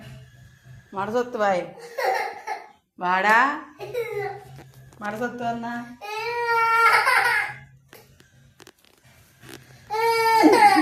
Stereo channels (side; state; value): both; identical; correlation 1.00